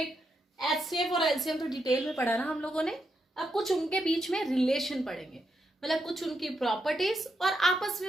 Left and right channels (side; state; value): both; normal; correlation 0.82